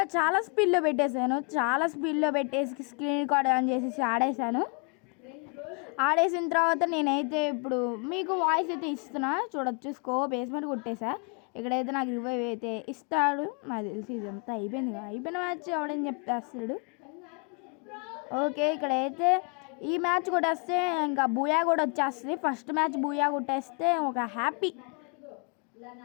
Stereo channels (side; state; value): right; quieter; 36.8 dB